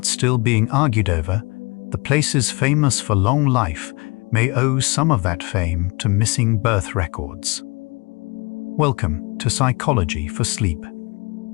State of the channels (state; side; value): quieter; right; 27.9 dB